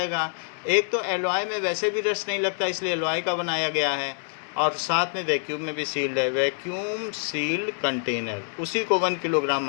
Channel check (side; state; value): right; silent; digital silence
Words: एक तो एलॉय में वैसे भी रस्ट नहीं लगता, इसलिए एलॉय का बनाया गया है, और साथ में वैक्यूम में भी सील्ड है. वैक्यूम सील्ड कंटेनर, उसी को 1 किलोग्राम